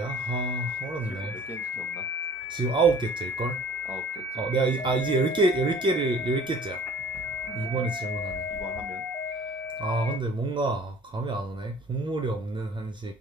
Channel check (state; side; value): normal; both; correlation 0.49